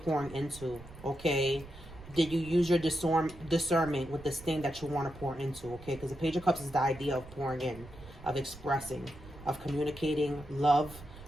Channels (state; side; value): noise; right; rumble, 17 dB below the sound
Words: into, okay? Did you use your discernment with this thing that you want to pour into, okay? Because the Page of Cups is the idea of pouring in, of expressing, of communicating love,